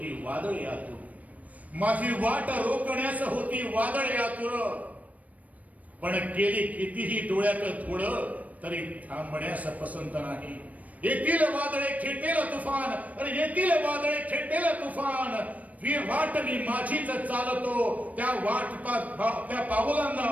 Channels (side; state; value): left; late; 0.071 ms